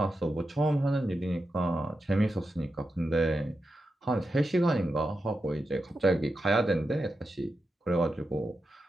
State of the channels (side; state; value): both; normal; correlation 0.89